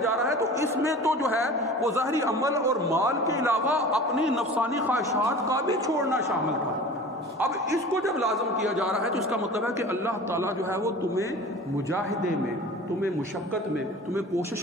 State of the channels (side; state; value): both; normal; correlation 0.39